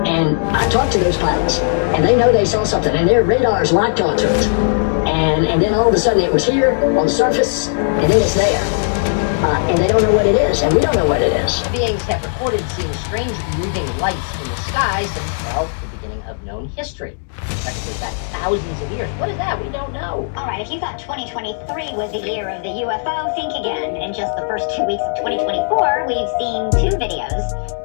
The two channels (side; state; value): right; silent; digital silence